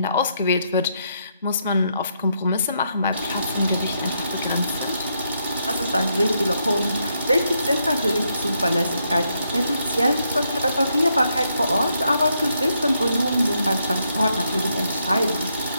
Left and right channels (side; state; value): both; inverted; correlation -0.78